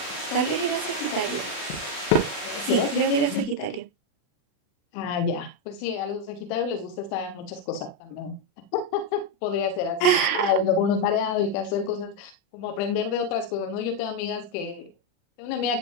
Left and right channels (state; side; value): late; right; 39 ms